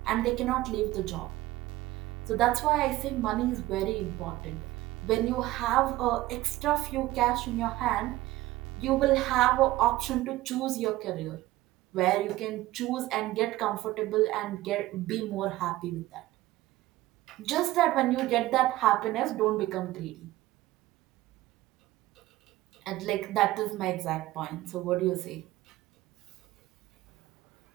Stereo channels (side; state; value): left; quieter; 16.8 dB